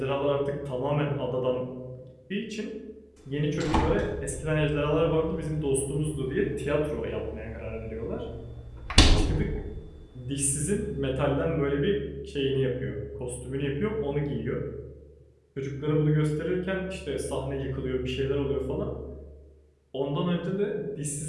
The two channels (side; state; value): both; identical; correlation 1.00